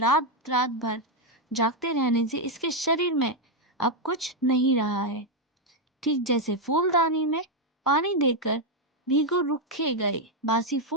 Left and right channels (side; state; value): both; normal; correlation 0.02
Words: रात भर जागते रहने से इसके शरीर में अब कुछ नहीं रहा है। ठीक जैसे फूलदानी में पानी देकर भीगो रुखे गए बासी